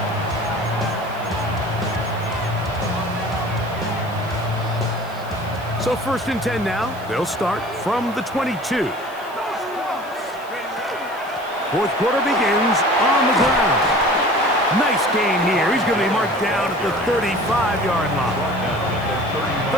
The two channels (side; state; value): right; noise; hiss, 23 dB below the sound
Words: So first and 10 now. They'll start from the 22. Fourth quarter begins on the ground. Nice gain here. He's going to be marked down at the 35-yard line.